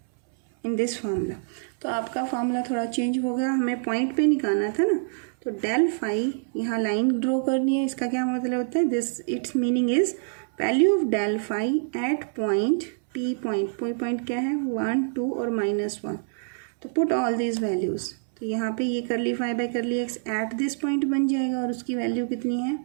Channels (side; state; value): left; silent; 61 dB below the other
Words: in this formula. तो आपका फार्मूला थोड़ा चेंज हो गया, हमें पॉइंट पे निकालना था ना। तो डेल फाई, यहाँ लाइन ड्रॉ करनी है, इसका क्या मतलब होता है? This its meaning is value of del phi at point P. Point क्या है? 1, 2 और -1। तो पुट ऑल दीज वैल्यूज। तो यहाँ पे ये curly phi by curly X at this point बन जाएगा और उसकी वैल्यू कितनी है?